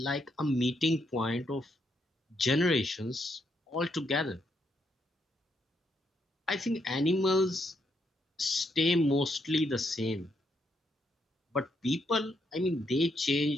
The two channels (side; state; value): both; normal; correlation 0.77